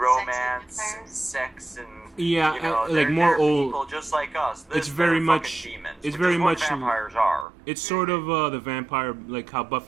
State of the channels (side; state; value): left; drops out; at 7.5 s